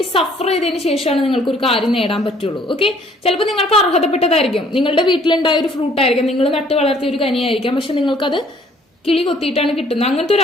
സഫർ ചെയ്തതിന് ശേഷമാണ് നിങ്ങൾക്ക് ഒരു കാര്യം നേടാൻ പറ്റുള്ളൂ. ഓക്കെ, ചിലപ്പോൾ നിങ്ങൾക്ക് അർഹതപ്പെട്ടതായിരിക്കും, നിങ്ങളുടെ വീട്ടിലുണ്ടായ ഒരു ഫ്രൂട്ട് ആയിരിക്കാം, നിങ്ങൾ നട്ട് വളർത്തിയ ഒരു കനിയായിരിക്കാം, പക്ഷെ നിങ്ങൾക്കത് കിളി കൊത്തിയിട്ടാണ് കിട്ടുന്നത്. അങ്ങനത്തെ ഒരു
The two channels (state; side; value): normal; both; correlation 0.60